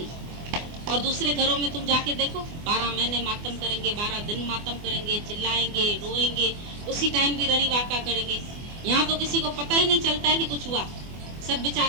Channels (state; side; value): late; left; 24 ms